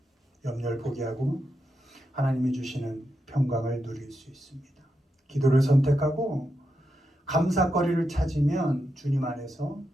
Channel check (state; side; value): normal; both; correlation 0.86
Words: 염려를 포기하고 하나님이 주시는 평강을 누릴 수 있습니다. 기도를 선택하고 감사거리를 찾으면 주님 안에서